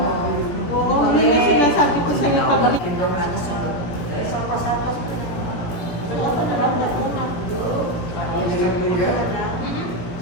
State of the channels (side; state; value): right; late; 17 ms